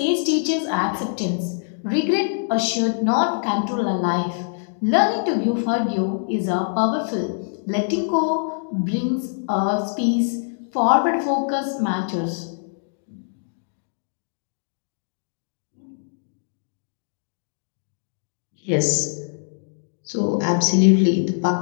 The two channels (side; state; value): right; silent; digital silence